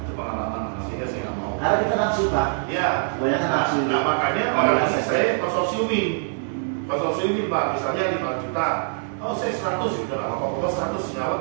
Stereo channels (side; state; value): left; silent; 63 dB below the other